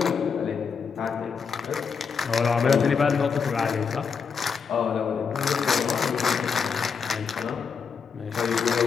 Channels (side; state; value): right; quieter; 6.0 dB